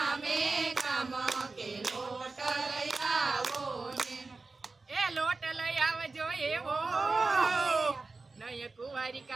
गाम के लोट लयावो ने ए लोट लयावजो एवो नय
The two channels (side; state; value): left; quieter; 3.8 dB